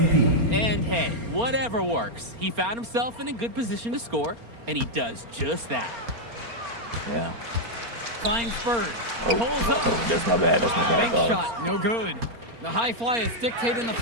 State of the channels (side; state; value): left; late; 4.3 ms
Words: And hey, whatever works. He found himself in a good position to score, and he does just that. Yeah. Finds Bird. Oh, Pulls up. that's my bad. That's my bad, Bank dogs. shot, no good. The high flyers dictating the